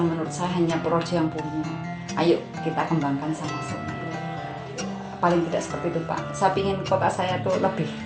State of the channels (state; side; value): identical; both; correlation 1.00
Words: menurut saya hanya Purworejo yang punya. Ayo kita kembangkan sama-sama. Paling tidak seperti itu, Pak. Saya ingin kota saya tuh lebih